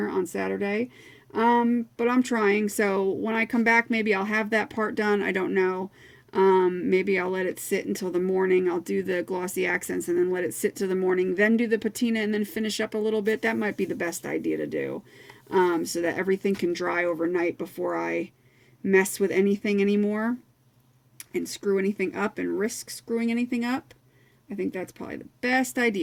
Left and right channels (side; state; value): both; identical; correlation 1.00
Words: on Saturday. But I'm trying. So when I come back, maybe I'll have that part done. I don't know. Maybe I'll let it sit until the morning. I'll do the glossy accents and then let it sit till the morning, then do the patina and then finish up a little bit. That might be the best idea to do, so that everything can dry overnight before I mess with anything anymore and screw anything up and risk screwing anything up. I think that's probably the best